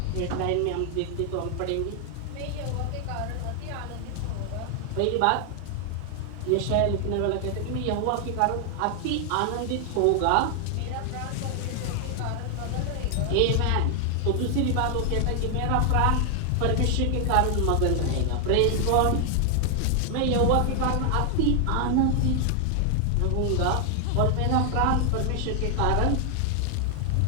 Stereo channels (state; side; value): different; both; correlation 0.00